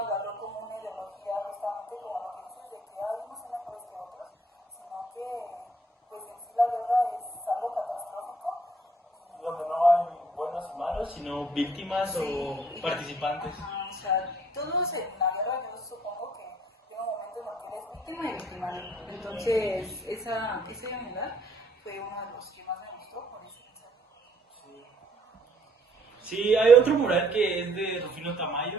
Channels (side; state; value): both; normal; correlation 0.63